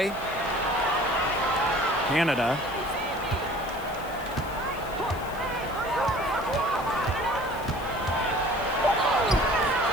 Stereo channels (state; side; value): noise; left; hiss, 20 dB below the sound